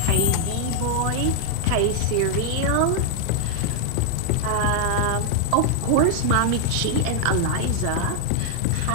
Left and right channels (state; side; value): different; both; correlation 0.00